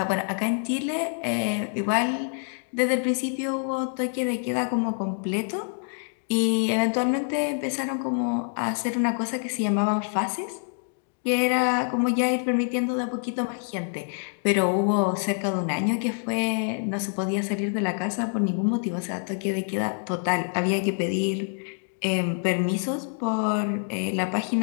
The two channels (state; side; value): silent; right; 59 dB below the other